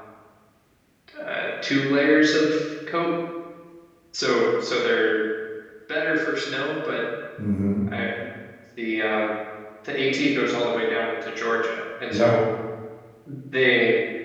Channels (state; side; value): identical; both; correlation 1.00